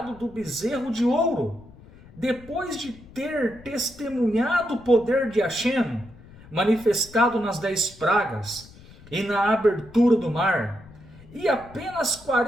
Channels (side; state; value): left; noise; rumble, 21 dB below the sound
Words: do bezerro de ouro, depois de ter testemunhado o poder de Hashem, manifestado nas 10 pragas e na abertura do mar, e apenas